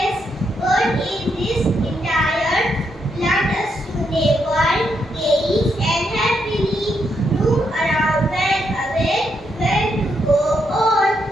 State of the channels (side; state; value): both; normal; correlation 0.79